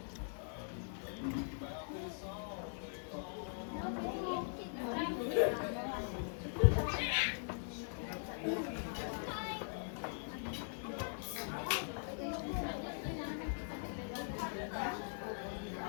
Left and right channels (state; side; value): silent; right; 50 dB below the other